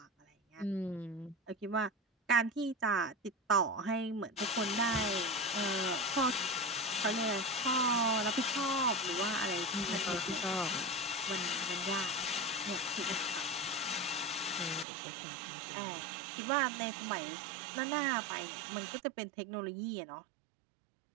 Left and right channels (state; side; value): drops out; left; at 14.9 s